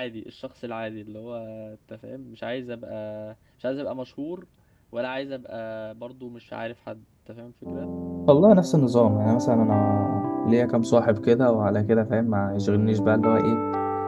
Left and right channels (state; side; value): identical; both; correlation 1.00